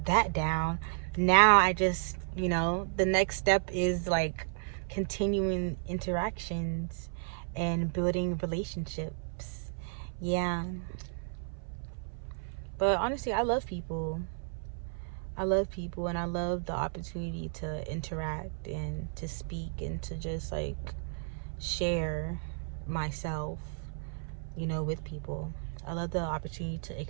that down. Now I just, the next step is like continuing interactions and building relationships. Yeah. But honestly, I love people. I love people and I love the opportunity to interact and to speak and to just like share myself, with people. I love the opportunity to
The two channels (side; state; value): left; silent; 56 dB below the other